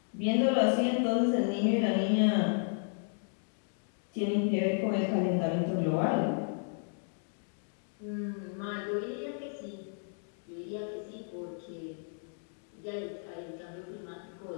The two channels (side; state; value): right; silent; digital silence